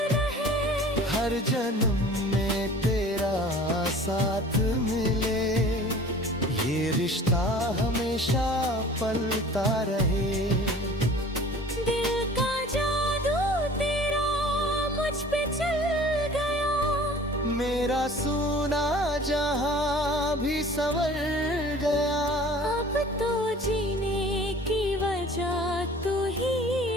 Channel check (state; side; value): normal; both; correlation 0.46